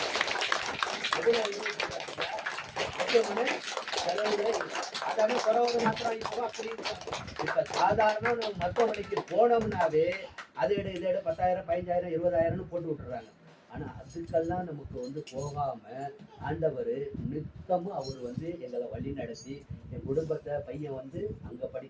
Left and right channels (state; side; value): identical; both; correlation 1.00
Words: அதாவது குறவு மாத்திரம் இப்போ அப்படி இப்ப சாதாரண நம்ம மருத்துவமனைக்கு போனோம்னாவே அதை இதை 10,000 15,000 20,000 போட்டு விட்டுறாங்க. ஆனா அதுக்கெல்லாம் நமக்கு வந்து போகாம ஆண்டவர் நித்தமும் அவர் வந்து எங்களை வழி நடத்தி என் குடும்பத்தை, பையன் வந்து அங்க